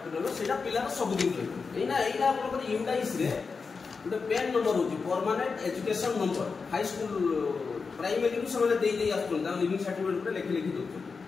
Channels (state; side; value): quieter; right; 4.9 dB